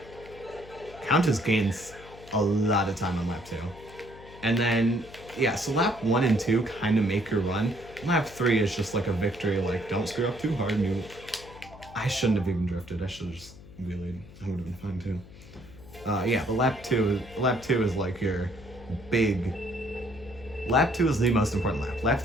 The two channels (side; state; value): left; noise; hum, 19 dB below the sound